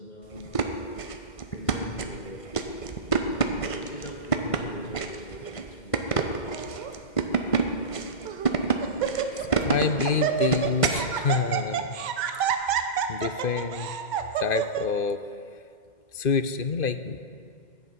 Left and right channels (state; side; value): late; right; 2.1 ms